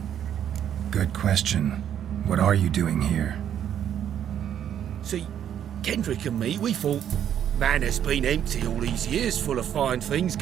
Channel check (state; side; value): quieter; left; 9.7 dB